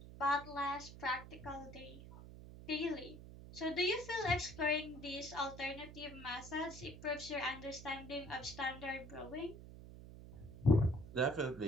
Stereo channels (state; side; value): noise; right; hum, 14 dB below the sound